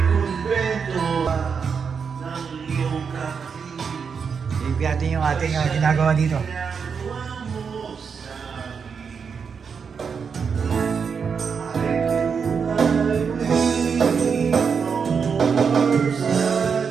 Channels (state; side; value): quieter; left; 6.1 dB